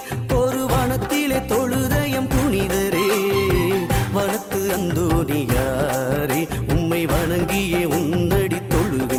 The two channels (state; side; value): identical; both; correlation 1.00